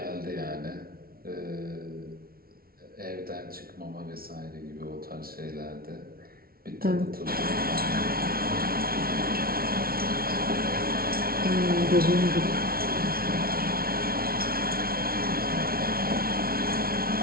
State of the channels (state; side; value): late; left; 0.44 ms